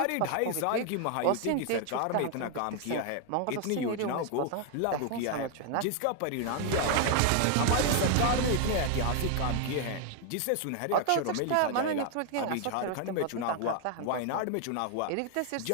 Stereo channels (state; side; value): different; both; correlation 0.00